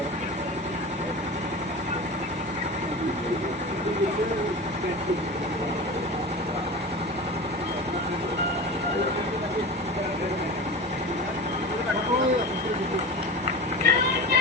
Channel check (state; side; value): normal; both; correlation 0.30